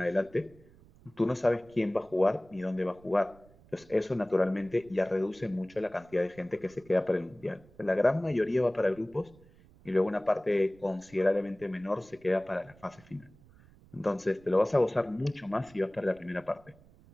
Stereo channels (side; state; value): right; noise; rumble, 26 dB below the sound